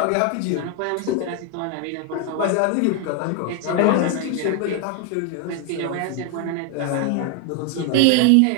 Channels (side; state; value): both; different; correlation 0.01